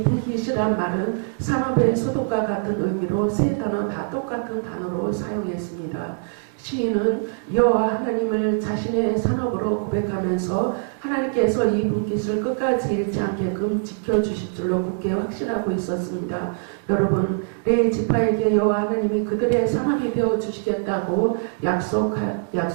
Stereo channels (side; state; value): left; silent; digital silence